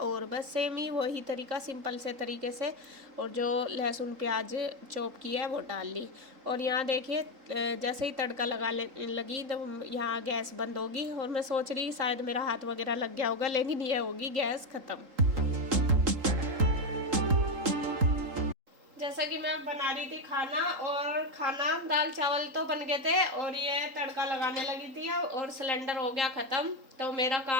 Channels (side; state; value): left; late; 3.8 ms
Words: बस सेम ही वही तरीका, सिंपल से तरीके से। और जो लहसुन प्याज चॉप किया है वो डाल ली। और यहाँ देखिए जैसे ही तड़का लगी तो यहाँ गैस बंद होगी। और मैं सोच रही शायद मेरा हाथ वगैरह लग गया होगा, लेकिन ये होगी गैस ख़त्म। जैसा कि मैं बना रही थी खाना, और खाना दाल चावल तो बन गए थे और ये तड़का लगाने लगी थी, और सिलेंडर हो गया ख़त्म। तो मेरा